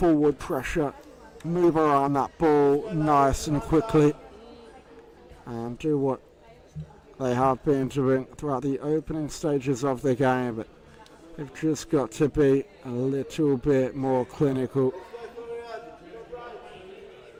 pressure, move around that ball nice and quickly, and do what they have been doing throughout the opening stages of the game, but they've just got to be a little bit more clinical.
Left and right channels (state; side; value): identical; both; correlation 1.00